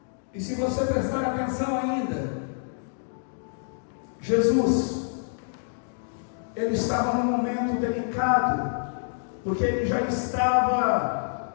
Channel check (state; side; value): silent; right; digital silence